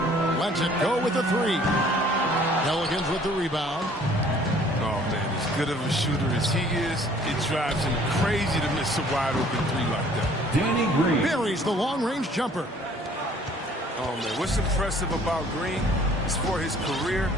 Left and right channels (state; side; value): normal; both; correlation 0.56